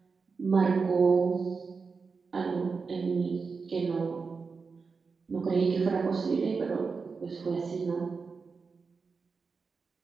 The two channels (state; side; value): quieter; left; 4.9 dB